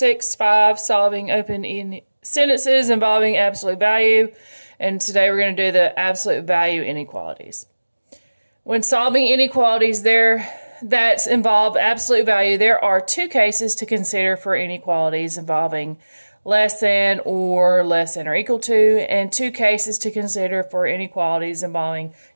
solving open sentences involving absolute value, and today we're going to do the absolute value inequalities. When solving inequalities that involve absolute value, there are two cases to consider for inequalities involving less than or equal to, and two cases to consider for inequalities involving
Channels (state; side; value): inverted; both; correlation -1.00